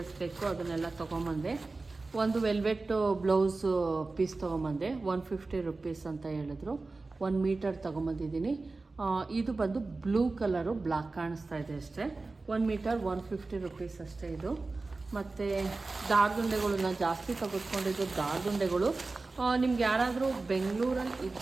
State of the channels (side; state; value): left; quieter; 3.6 dB